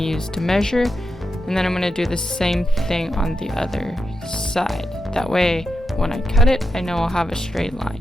to measure. And then I'm going to do the same thing on the other side. That way when I cut it, I know I'll have a straight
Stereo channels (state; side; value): normal; both; correlation 0.87